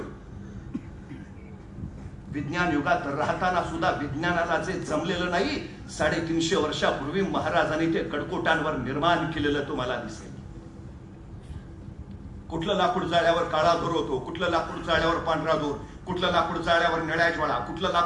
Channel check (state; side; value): identical; both; correlation 1.00